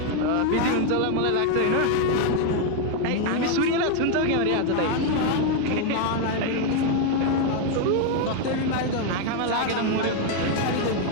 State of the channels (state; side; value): different; both; correlation 0.01